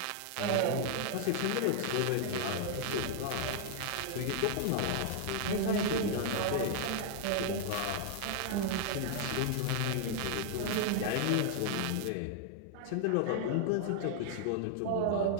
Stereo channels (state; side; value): different; both; correlation 0.00